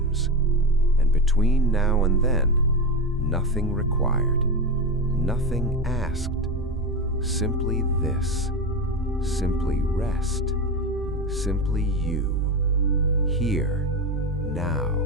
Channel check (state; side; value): normal; both; correlation 0.18